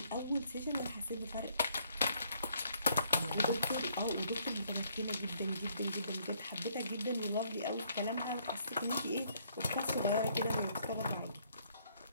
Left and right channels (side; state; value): both; inverted; correlation -0.66